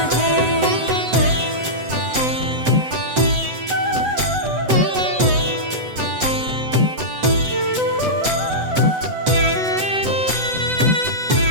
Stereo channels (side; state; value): left; late; 7.9 ms